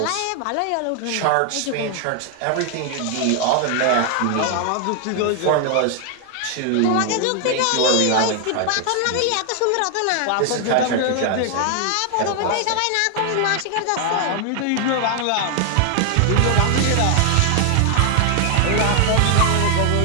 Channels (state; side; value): different; both; correlation 0.00